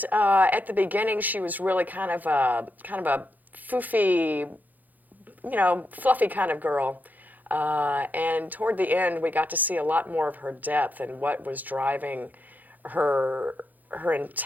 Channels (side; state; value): left; late; 0.083 ms